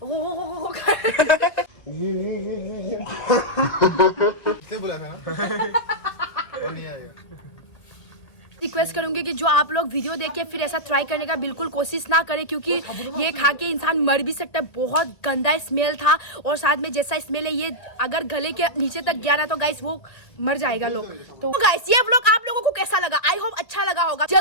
किसने बोला था ना और नहीं आएगा रिक्वेस्ट करूंगी कि जो आप लोग वीडियो देख के फिर ऐसा ट्राई करने का बिल्कुल कोशिश ना करें क्योंकि ये खा के इंसान मर भी सकता है बहुत गंदा स्मेल था और साथ में जैसा स्मेल है ये अगर गले के नीचे तक गया ना तो गाइस वो मर जाएगा लोग तो गाइस ये व्लॉग आप लोगों को कैसा लगा आई होप अच्छा लगा होगा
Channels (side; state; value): right; late; 2.0 ms